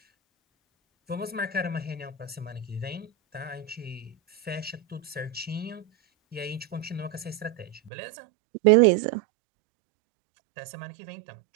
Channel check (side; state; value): left; drops out; at 7.9 s